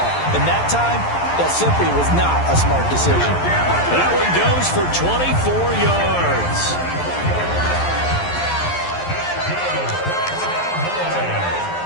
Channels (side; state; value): right; late; 11 ms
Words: And that time, that simply was not a smart decision. That one goes for 24 yards.